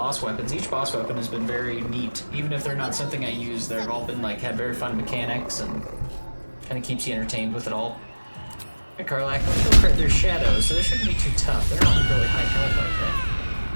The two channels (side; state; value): both; inverted; correlation -1.00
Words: weapons. Each boss weapon has been very neat. Even if they're not something I use, they've all been like had very fun mechanics and kind of keeps you entertained with it all. Hey, Karlak, let's go crit. There's shadows, so they shouldn't be too tough. They're not really high health like that.